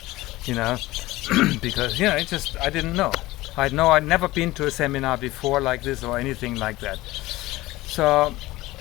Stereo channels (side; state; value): right; quieter; 18.5 dB